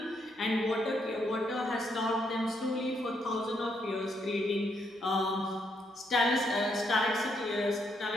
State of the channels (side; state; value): both; normal; correlation 0.76